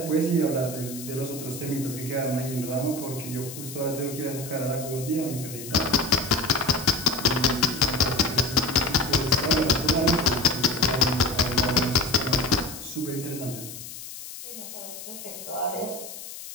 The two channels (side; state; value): left; noise; hiss, 12 dB below the sound